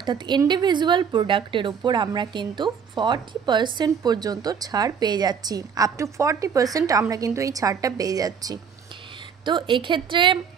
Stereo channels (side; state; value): left; quieter; 6.9 dB